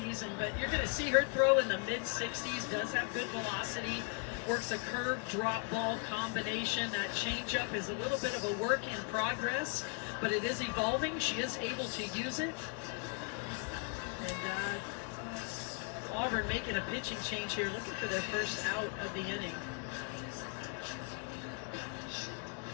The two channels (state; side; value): quieter; right; 37.2 dB